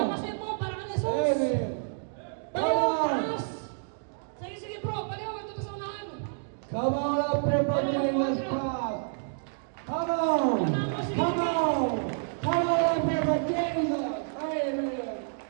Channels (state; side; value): silent; left; digital silence